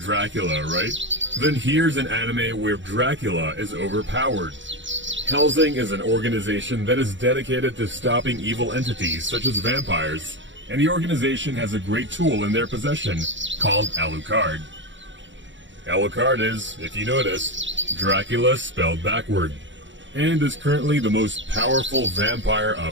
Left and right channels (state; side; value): late; left; 0.54 ms